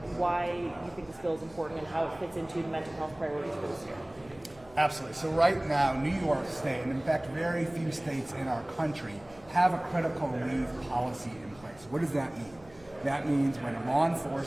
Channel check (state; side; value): noise; right; hum, 25 dB below the sound